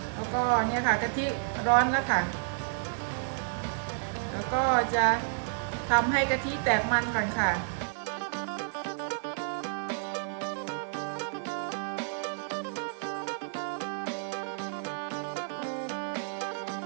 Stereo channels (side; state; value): left; silent; 57 dB below the other